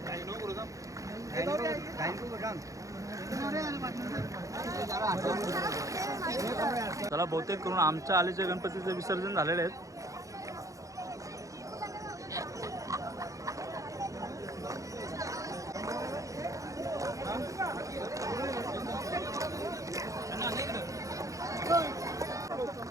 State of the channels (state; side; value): late; left; 0.16 ms